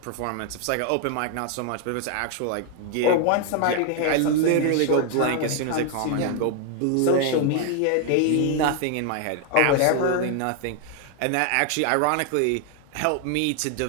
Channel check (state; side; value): different; both; correlation 0.00